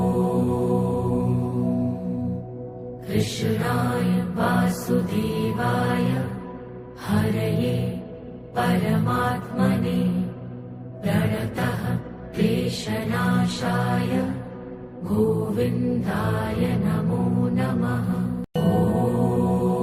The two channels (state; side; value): identical; both; correlation 1.00